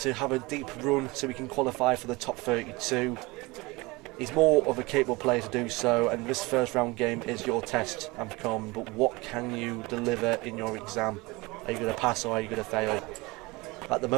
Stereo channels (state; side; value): quieter; left; 23.6 dB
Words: have a deep run so he can qualify for the top 32. He's more of a capable player to do so, and this first round game is your test, Anthony Coleman. But what can you deliver in your exam? Are you going to pass or are you going to fail? At the